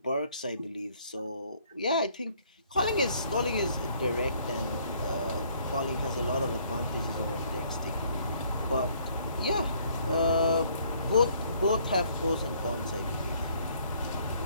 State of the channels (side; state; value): both; inverted; correlation -0.63